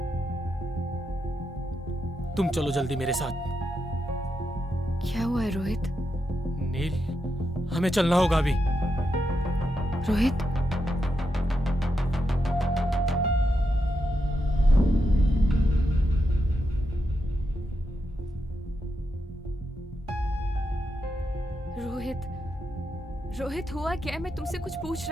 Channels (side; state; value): both; normal; correlation 0.84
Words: तुम चलो जल्दी मेरे साथ। क्या हुआ है रोहित? नील, हमें चलना होगा अभी। रोहित, रोहित, रोहित हुआ क्या है? मैं तुमसे कुछ पूछ